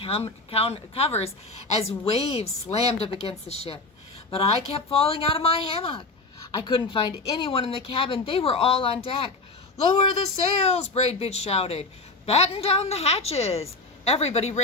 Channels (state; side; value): quieter; right; 3.3 dB